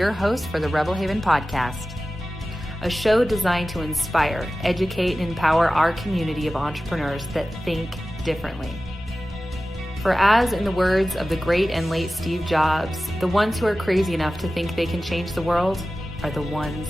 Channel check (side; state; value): both; normal; correlation 0.95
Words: host for the Rebel Haven podcast, a show designed to inspire, educate, and empower our community of entrepreneurs that think differently. For as in the words of the great and late Steve Jobs, the ones who are crazy enough to think they can change the world are the ones